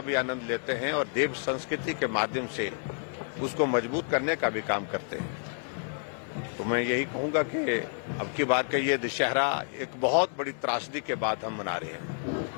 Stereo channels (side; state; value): right; silent; 58 dB below the other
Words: आनंद लेते हैं और देव संस्कृति के माध्यम से उसको मजबूत करने का भी काम करते हैं। तो मैं यही कहूंगा कि अब की बार का ये दशहरा एक बहुत बड़ी त्रासदी के बाद हम मना रहे